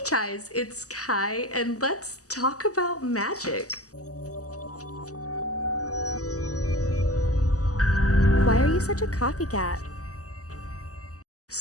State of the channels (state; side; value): late; right; 0.66 ms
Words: Chais, it's Kai, and let's talk about magic. Why are you such a copycat?